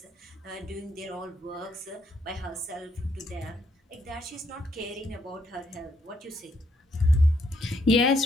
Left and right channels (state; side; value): normal; both; correlation 0.73